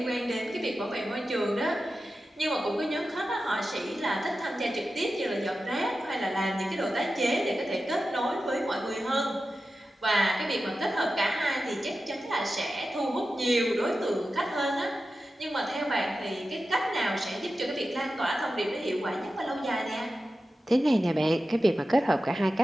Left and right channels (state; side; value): normal; both; correlation 0.93